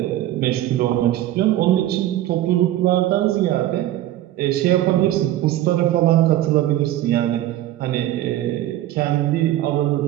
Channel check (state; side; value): quieter; left; 13.9 dB